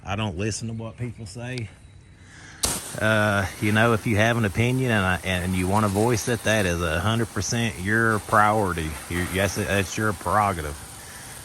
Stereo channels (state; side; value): identical; both; correlation 1.00